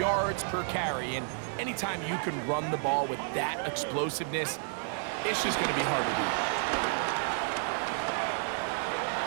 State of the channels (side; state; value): left; silent; 57 dB below the other